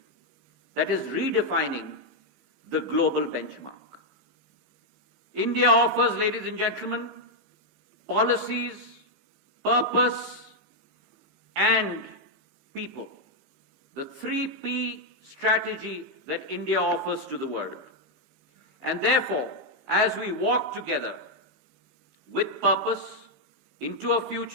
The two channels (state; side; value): late; left; 15 ms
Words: that is redefining the global benchmark. India offers, ladies and gentlemen, policies, purpose, and people. The 3P strategy that India offers to the world. And therefore, as we walk together with purpose into a